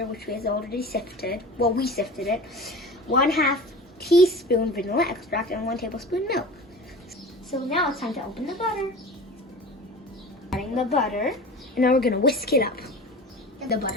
which we have already sifted. Well, we sifted it. 1/2 teaspoon vanilla extract and 1 tablespoon milk. So now it's time to open the butter. Adding the butter, and now we're gonna whisk it up. The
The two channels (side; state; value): both; normal; correlation 0.36